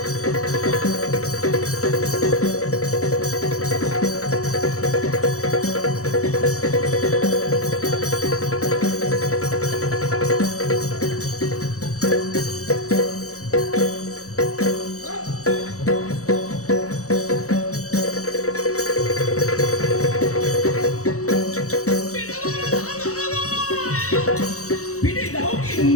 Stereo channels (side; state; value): right; late; 0.65 ms